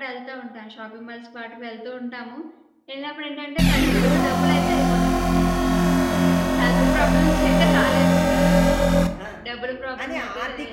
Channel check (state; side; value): identical; both; correlation 1.00